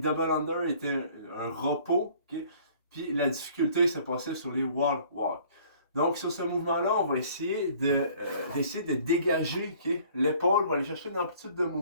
under étaient un repos. Okay? Puis la difficulté se passait sur les wall walk. Donc, sur ce mouvement-là, on va essayer de dégager l'épaule. On va aller chercher une amplitude de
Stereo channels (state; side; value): inverted; both; correlation -0.54